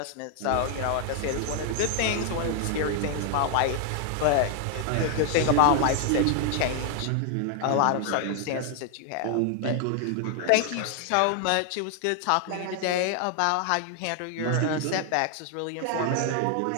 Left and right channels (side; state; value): both; different; correlation 0.00